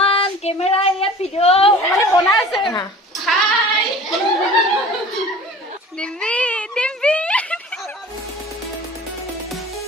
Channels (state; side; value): normal; both; correlation 0.43